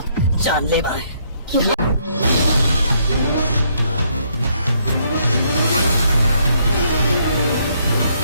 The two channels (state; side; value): inverted; both; correlation -0.71